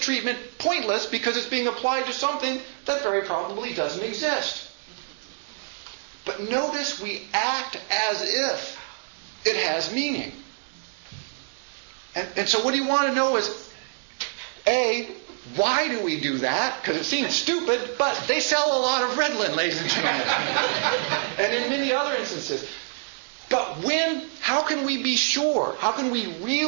pointless because it's being applied to something that very probably doesn't exist. But notice we act as if it has meaning. And so what you want to know is, A, why do we do that? Because it seems stupid, but they sell a lot of Ritalin, ladies and gentlemen. And in many other instances. But how can we be sure? How can we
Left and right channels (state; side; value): silent; left; 59 dB below the other